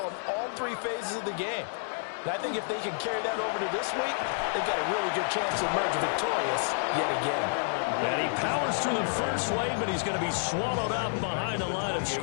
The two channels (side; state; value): right; silent; digital silence